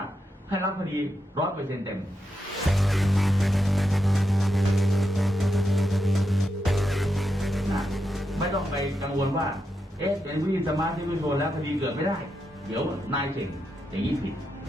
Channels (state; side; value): normal; both; correlation 0.85